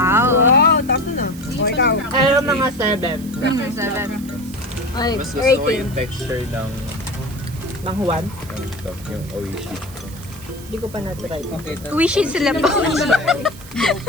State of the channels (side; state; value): right; noise; hiss, 18 dB below the sound